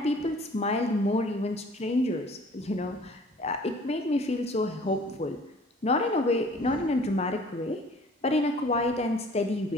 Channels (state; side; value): normal; both; correlation 0.51